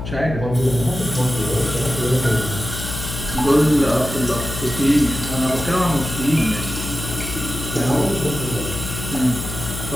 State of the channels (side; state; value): left; noise; hum, 7 dB below the sound